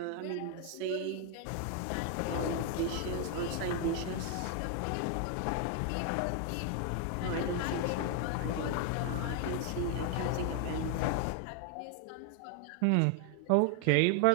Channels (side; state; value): both; different; correlation 0.00